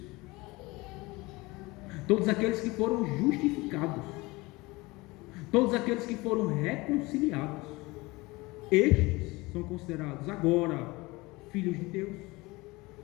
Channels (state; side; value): quieter; right; 22.6 dB